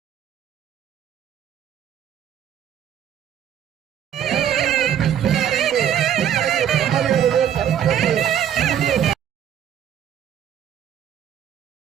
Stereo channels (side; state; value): left; quieter; 9.7 dB